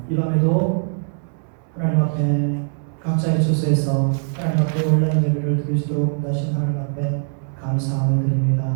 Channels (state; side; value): silent; left; 65 dB below the other